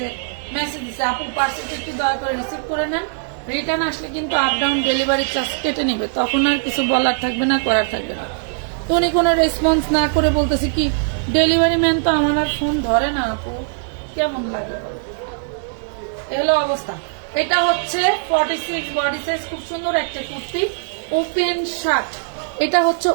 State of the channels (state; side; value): silent; left; digital silence